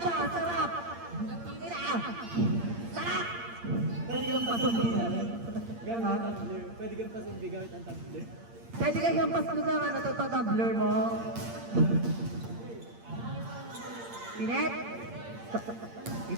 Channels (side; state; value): left; late; 8.7 ms